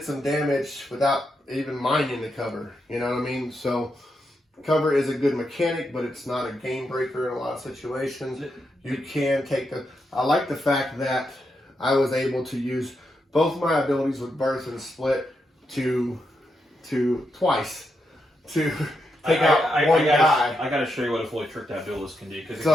some damage without even minding the cover. You know what I mean? So cover is a good mechanic, but it's not a game breaker in a lot of situations. You can take I like the fact that I was able to use both my abilities with burst and split to twice to take out one guy. I gotta show you what a fully tricked out duelist can do.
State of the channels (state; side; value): normal; both; correlation 0.83